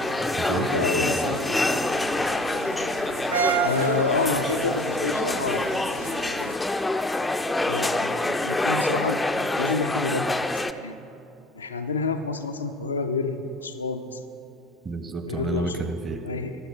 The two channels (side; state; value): both; normal; correlation 0.43